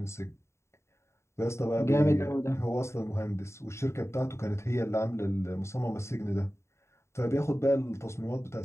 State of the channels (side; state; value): right; late; 0.13 ms